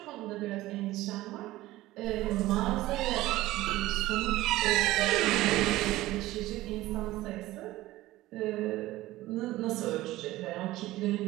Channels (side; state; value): left; quieter; 17.0 dB